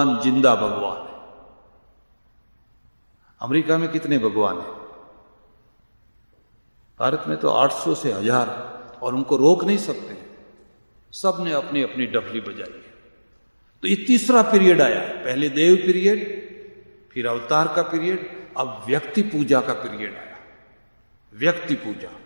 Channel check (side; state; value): both; inverted; correlation -1.00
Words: जिंदा भगवान है। अमेरिका में कितने भगवान हैं? भारत में तो 800 से 1000, और उनको रोक नहीं सकते। सब ने अपनी अपनी डफली बजाई है। तो ये तीसरा पीरियड आया। पहले देव पीरियड, फिर अवतार का पीरियड, अब व्यक्ति पूजा का पीरियड आया। व्यक्ति पूजा,